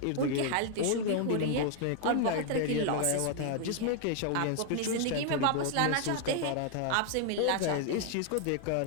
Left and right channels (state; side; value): different; both; correlation 0.00